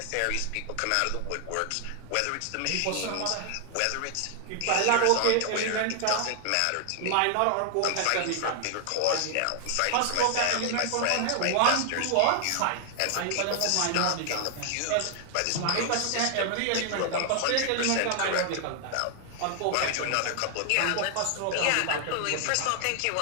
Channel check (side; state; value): both; different; correlation 0.00